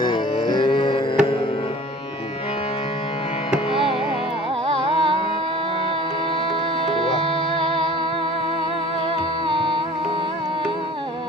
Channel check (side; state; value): both; normal; correlation 0.46